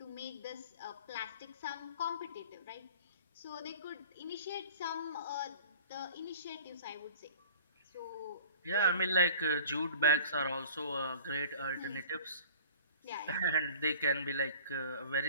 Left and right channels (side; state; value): both; inverted; correlation -0.46